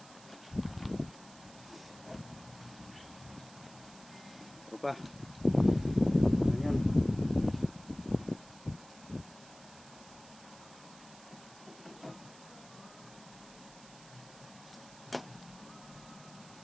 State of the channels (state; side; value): noise; right; hiss, 20 dB below the sound